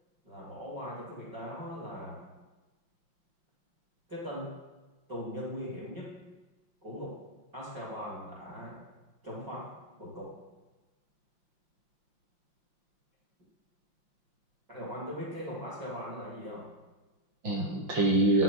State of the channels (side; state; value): left; late; 5.7 ms